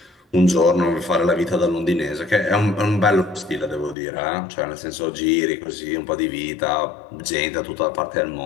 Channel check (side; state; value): right; drops out; at 4.0 s